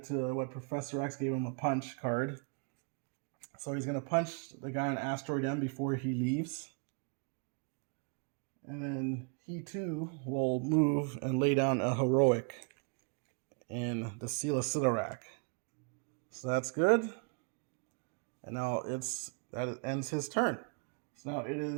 to what Professor X gave him, a punch card. So he's going to punch the guy on Asteroid M before he leaves. And then he too will move and lay down a heroic in the Seal of Sidorak. So that's good. And now that ends his turn. So now it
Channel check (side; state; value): left; quieter; 37.9 dB